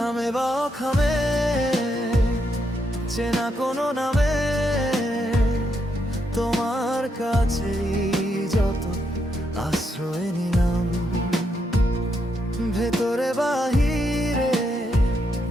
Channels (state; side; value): normal; both; correlation 0.80